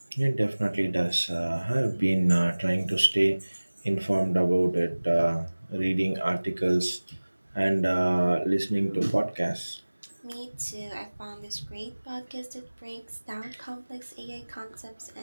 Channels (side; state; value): both; inverted; correlation -1.00